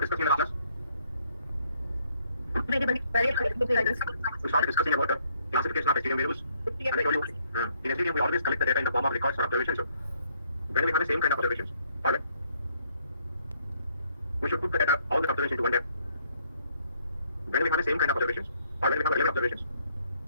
discussing in the last class? We started discussing about the classification of STM variables. And I told you, in STM we always collect the data in the form of records or observations. So when we have the same kind of observations, alright, we should put the data, all the observations into one data. When we have the same kind of observations, or when we have 11 observations,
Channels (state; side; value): inverted; both; correlation -0.68